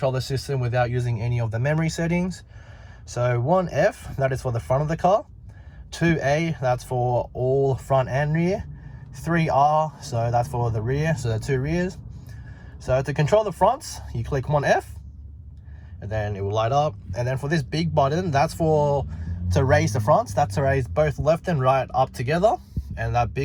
the system without using any of the memory settings. So 1F, that is for the front of the car. 2A, that's for all front and rear. 3R, so that's for the rear, so the two rears. So to control the fronts, you click 1F, and then it will light up. And then for this big button, that's to raise the fronts. That's to raise both left and right up together. And that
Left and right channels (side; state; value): both; identical; correlation 1.00